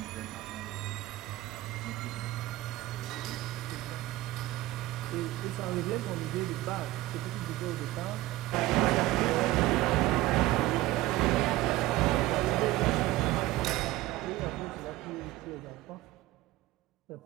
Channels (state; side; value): quieter; left; 17.2 dB